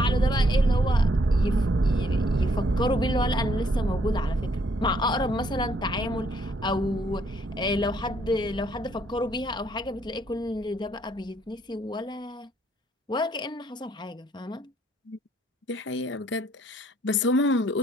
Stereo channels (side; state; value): both; normal; correlation 0.69